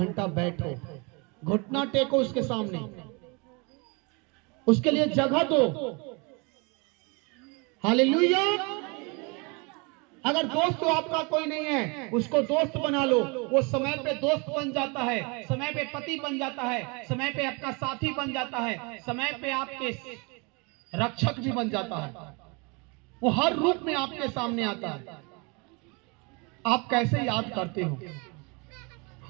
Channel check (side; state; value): left; quieter; 30.4 dB